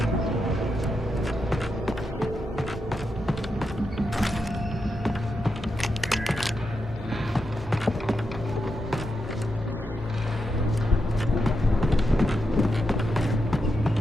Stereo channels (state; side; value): normal; both; correlation 0.86